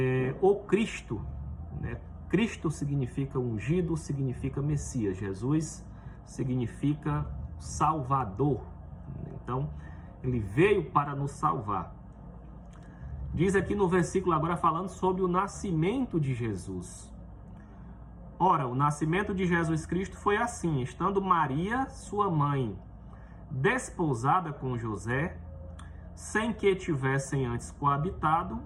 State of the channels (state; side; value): identical; both; correlation 1.00